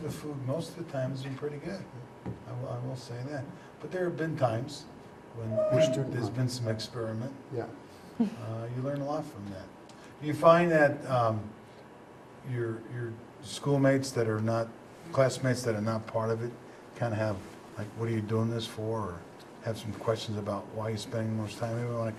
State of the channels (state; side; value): identical; both; correlation 1.00